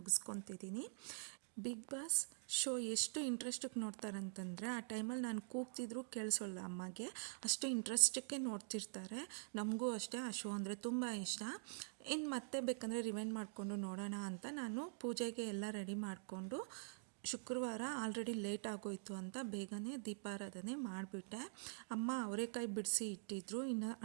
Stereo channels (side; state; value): left; silent; digital silence